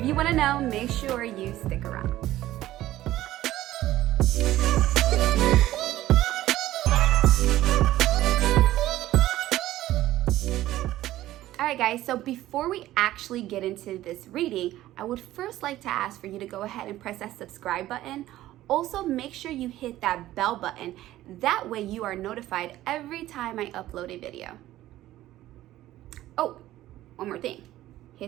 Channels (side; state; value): left; quieter; 14.8 dB